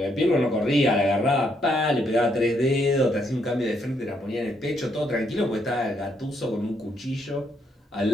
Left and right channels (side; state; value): both; normal; correlation 0.74